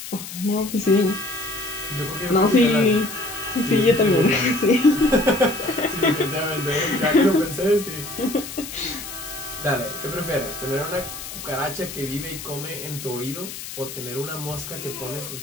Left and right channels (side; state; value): left; noise; hiss, 10 dB below the sound